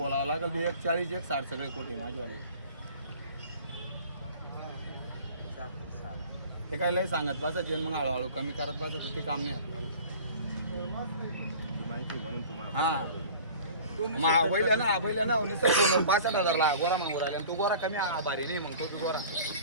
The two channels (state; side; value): inverted; both; correlation -0.43